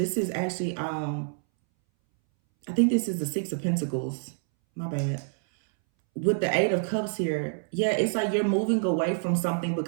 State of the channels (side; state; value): left; silent; 60 dB below the other